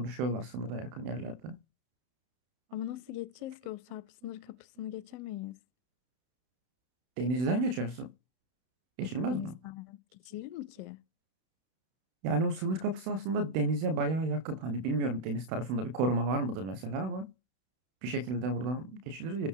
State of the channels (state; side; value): late; left; 32 ms